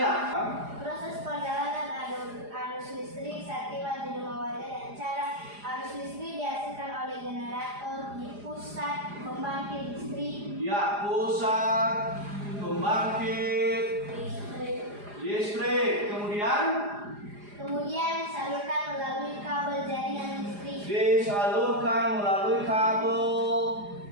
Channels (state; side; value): late; left; 4.9 ms